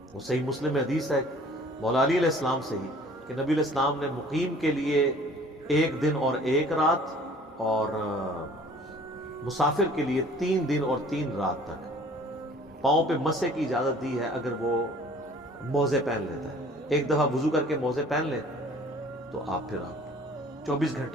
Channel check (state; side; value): normal; both; correlation 0.52